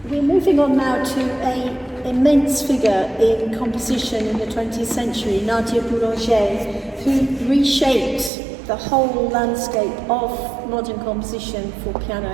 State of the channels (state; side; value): drops out; left; at 8.3 s